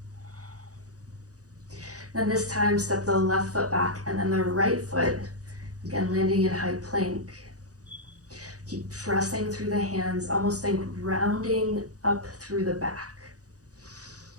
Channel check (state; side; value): late; left; 0.67 ms